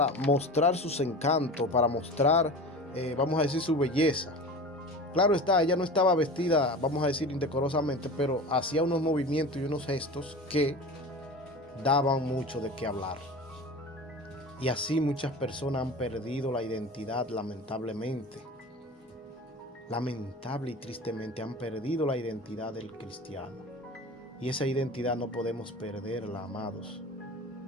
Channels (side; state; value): both; normal; correlation 0.33